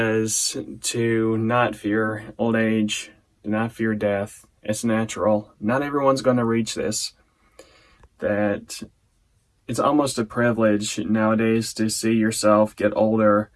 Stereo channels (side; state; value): both; identical; correlation 1.00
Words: to not fear old age, to not fear death. It's natural. Not everyone's going to reach this. That it's almost a privilege nowadays to see yourself get older.